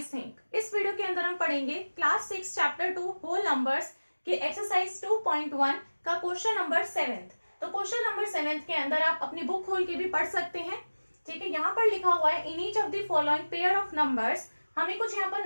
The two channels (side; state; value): both; inverted; correlation -1.00